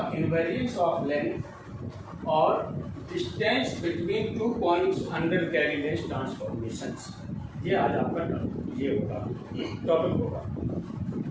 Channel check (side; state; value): both; identical; correlation 1.00